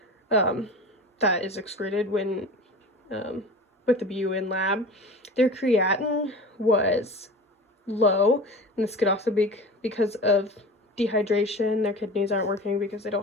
that is excreted when with the BUN lab. Their creatinine was low, and this could also be because of dehydration. Their kidneys aren't working because they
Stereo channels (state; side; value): normal; both; correlation 0.35